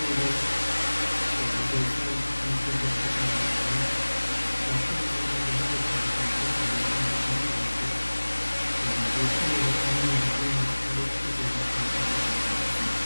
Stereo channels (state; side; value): inverted; both; correlation -1.00